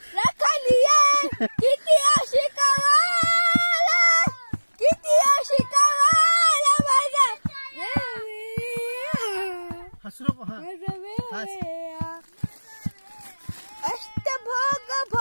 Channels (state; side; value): inverted; both; correlation -1.00